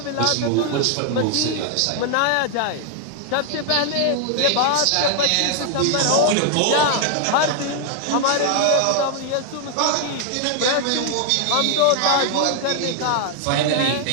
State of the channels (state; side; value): different; both; correlation 0.00